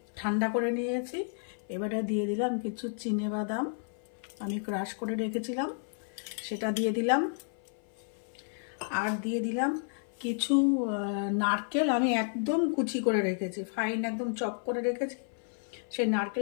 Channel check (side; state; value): right; silent; 56 dB below the other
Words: ঠান্ডা করে নিয়েছি। এবারে দিয়ে দিলাম কিছু চিনেবাদাম, আমি ক্রাশ করে রেখেছিলাম, সেটা দিয়ে দিলাম। আর দিয়ে দিলাম কিছু নারকেল, আমি একদম কুচি করে রেখেছি, ফাইন একদম চপ করে রেখেছি, সেই